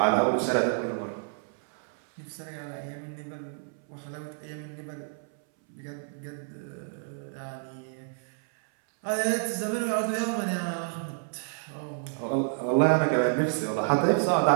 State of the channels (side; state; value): left; silent; 58 dB below the other